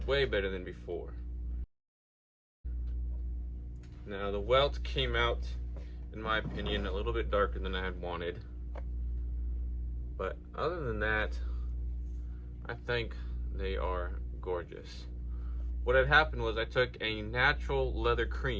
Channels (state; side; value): identical; both; correlation 1.00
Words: Way better than before. Now the welt came out, in my opinion, a little bit darker than I had wanted. But other than that, I think they are gorgeous. What had happened was I took a natural leather